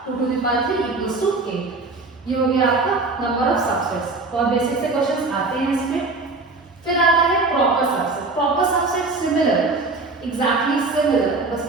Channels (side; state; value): left; quieter; 3.6 dB